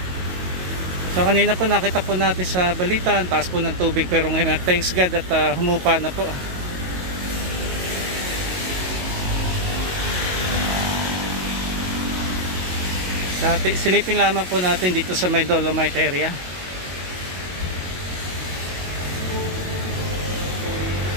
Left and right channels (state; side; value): late; left; 22 ms